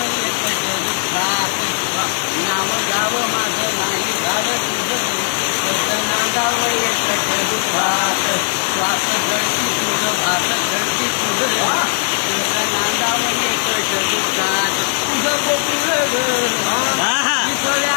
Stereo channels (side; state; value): right; silent; 68 dB below the other